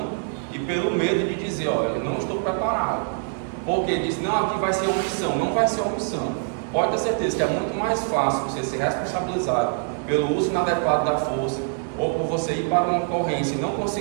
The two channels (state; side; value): silent; left; 62 dB below the other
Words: e pelo medo de dizer, olha, eu não estou preparado. Porque diz, não, aqui vai ser omissão. Não vai ser omissão. Pode ter certeza que é muito mais fácil você ser responsabilizado pelo uso inadequado da força, ou por você ir para uma ocorrência e não